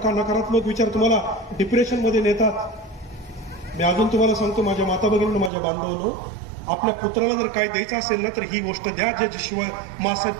नकारात्मक विचार तुम्हाला डिप्रेशनमध्ये नेतात. मी अजून तुम्हाला सांगतो माझ्या माता भगिनींनो, माझ्या बांधवांनो, आपल्या पुत्राला जर काय द्यायचं असेल ना तर ही गोष्ट द्या ज्याची शिवाय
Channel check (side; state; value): left; drops out; at 5.5 s